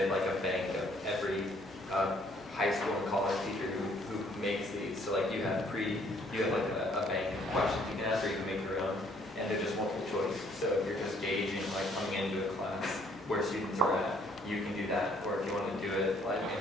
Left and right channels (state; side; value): normal; both; correlation 0.64